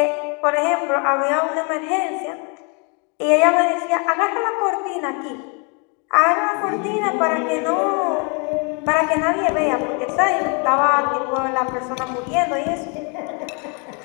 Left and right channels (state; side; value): quieter; right; 35.2 dB